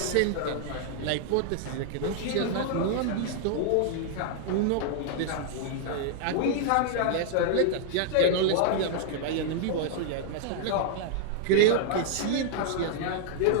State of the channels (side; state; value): both; different; correlation -0.01